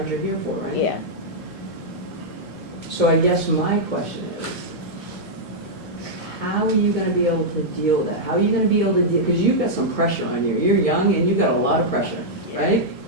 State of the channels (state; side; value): normal; both; correlation -0.06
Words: you're here for, right? yeah. So I guess my question is, how are you gonna be able to deal with that? How are you gonna be able to deal, because you've got some pressure on you. You're young and you've got a lot of pressure, right?